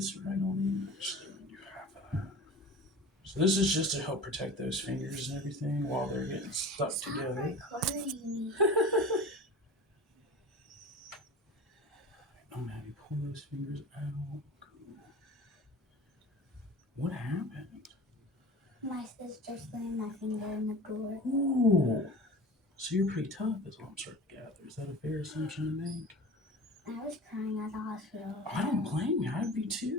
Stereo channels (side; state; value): both; normal; correlation 0.36